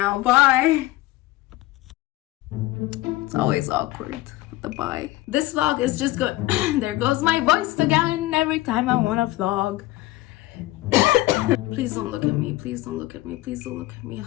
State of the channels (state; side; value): quieter; right; 18.0 dB